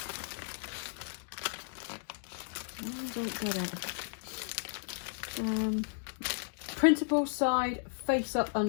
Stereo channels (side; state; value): right; silent; digital silence